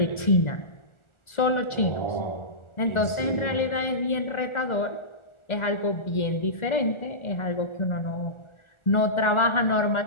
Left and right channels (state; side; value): late; right; 1.4 ms